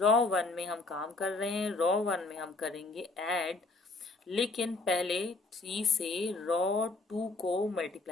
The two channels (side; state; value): right; quieter; 3.5 dB